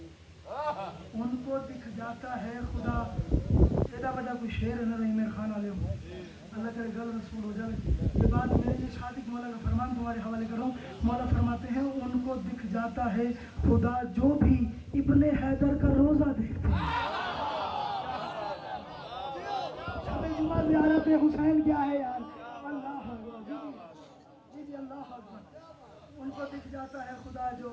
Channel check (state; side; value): identical; both; correlation 1.00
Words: ان کو دکھ جاتا ہے خدا تیرا وجہ کوئی شعر ہے نہ نہیں میرے خان والے ہوں اللہ کرے گل رسول ہو جائے یہ بات میرے لیے صادق مولا کا فرمان تمہارے حوالے کروں مولا فرماتے ہیں ان کو دکھ جاتا ہے خدا جو بھی ابن حیدر کا روزہ دیکھتے ہیں زیارت حسین کیا ہے یار اللہ جی اللہ اکبر ان کو دکھ جاتا ہے خدا جو